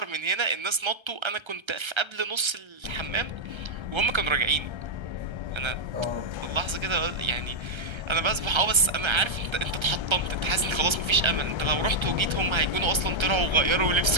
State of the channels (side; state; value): left; late; 1.3 ms